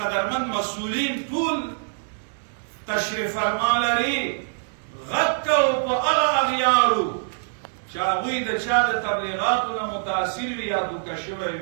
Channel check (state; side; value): silent; left; 62 dB below the other